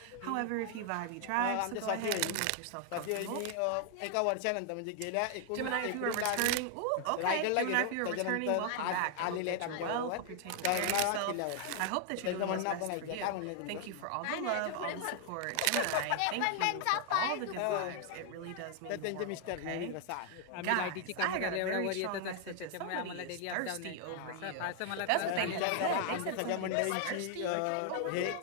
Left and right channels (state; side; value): different; both; correlation 0.00